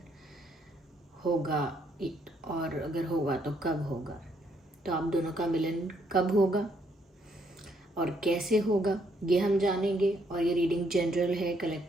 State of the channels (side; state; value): both; normal; correlation 0.71